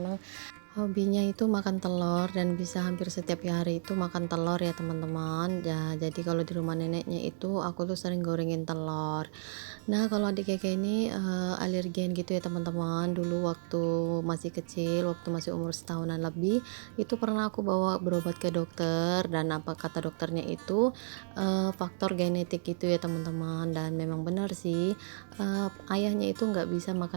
hobinya itu makan telur dan bisa hampir setiap hari itu makan telur ya teman-teman ya. Jadi kalau di rumah neneknya itu aku tuh sering gorengin telur. Nah, kalau adik Keke ini alergen gitu ya teman-teman. Dulu waktu masih kecil, waktu masih umur setahunan lebih, itu pernah aku bawa berobat ke dokter, dan apa kata dokternya itu faktor genetik gitu ya teman-teman. Dan memang benar sih, ayahnya itu nggak bisa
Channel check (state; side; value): silent; left; digital silence